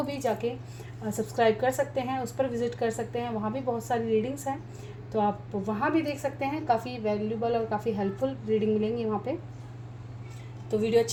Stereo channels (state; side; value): identical; both; correlation 1.00